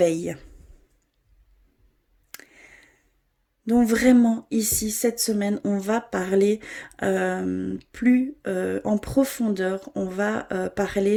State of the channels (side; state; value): both; identical; correlation 1.00